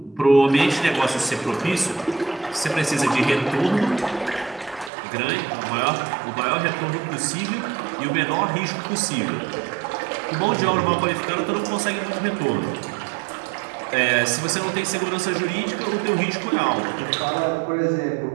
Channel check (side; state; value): left; drops out; at 4.9 s